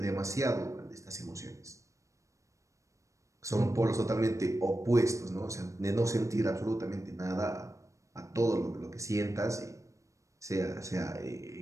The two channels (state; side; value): late; left; 0.15 ms